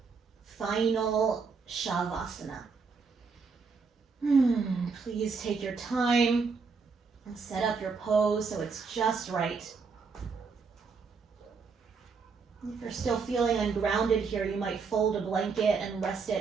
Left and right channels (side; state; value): left; quieter; 5.0 dB